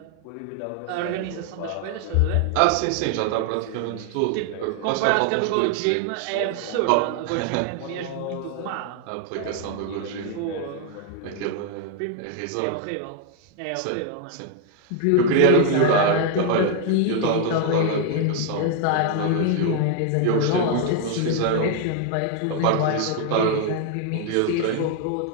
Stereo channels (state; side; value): different; both; correlation 0.00